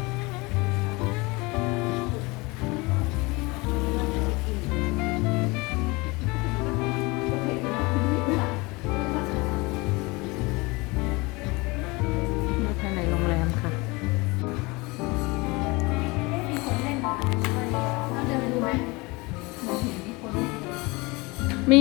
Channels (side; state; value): right; quieter; 24.9 dB